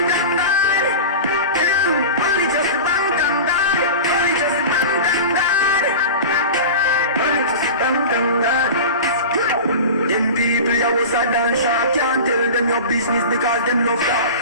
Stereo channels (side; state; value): both; inverted; correlation -0.31